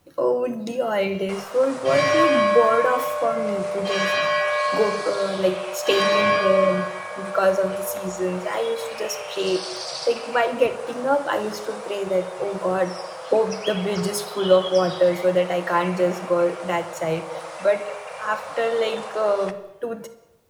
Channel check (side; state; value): both; identical; correlation 1.00